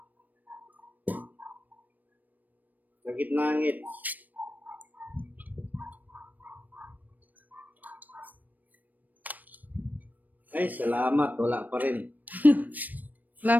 Sa gitnangit. Ay, salamat. Wala pa rin. Wala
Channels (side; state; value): left; late; 0.084 ms